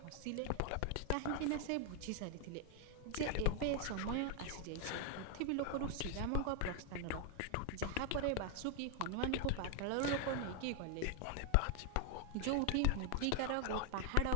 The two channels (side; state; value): both; different; correlation 0.01